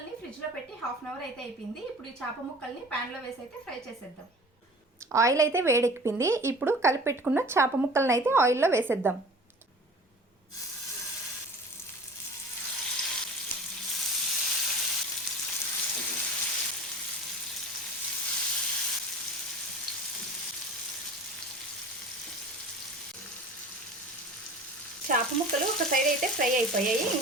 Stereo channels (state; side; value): normal; both; correlation 0.41